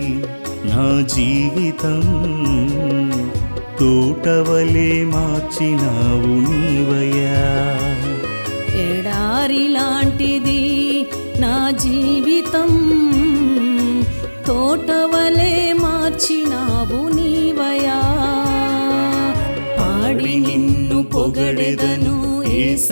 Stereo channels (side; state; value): both; inverted; correlation -1.00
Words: నా జీవితం, తోటవలే మార్చినావు నీవయ్యా. ఎడారి లాంటిది నా జీవితం, తోటవలే మార్చినావు నీవయా. పాడి నిన్ను పొగడెదను